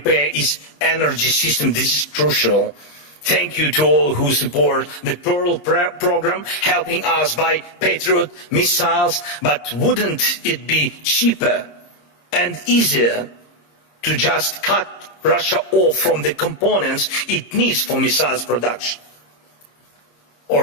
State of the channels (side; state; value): right; late; 26 ms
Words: its energy system. This is crucial. Thank you to all who support the Pearl program, helping us buy Patriot missiles. But wouldn't it be cheaper and easier to just cut Russia off from the components it needs for missiles production,